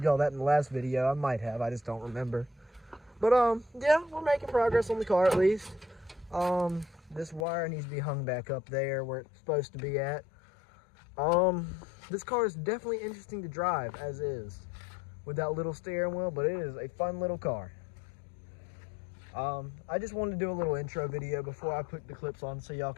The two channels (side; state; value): right; drops out; at 7.5 s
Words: y'all that in the last video. I might have, I just don't remember. But yeah, we're making progress on the car at least. This wire needs to be hung back up there where it's supposed to be at. This car is definitely interesting to drive as is, with that little steering wheel, but it is a fun little car. I just wanted to do a little intro video before I put the clips on, so y'all